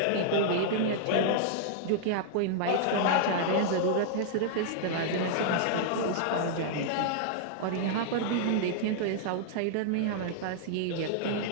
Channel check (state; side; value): different; both; correlation -0.01